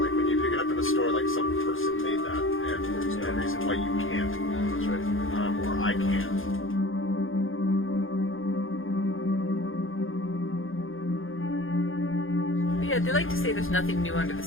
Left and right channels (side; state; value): right; late; 0.59 ms